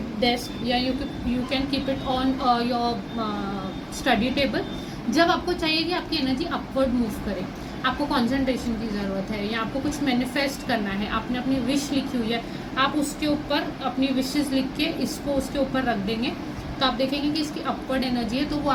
desk या you can keep it on your study table. जब आपको चाहिए कि आपकी एनर्जी अपवर्ड मूव करे, आपको कंसंट्रेशन की ज़रूरत है या आपको कुछ मैनिफेस्ट करना है, आपने अपनी विश लिखी हुई है, आप उसके ऊपर अपनी विशेस लिख के इसको उसके ऊपर रख देंगे, तो आप देखेंगे कि इसकी अपवर्ड एनर्जी है, तो वो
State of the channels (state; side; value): identical; both; correlation 1.00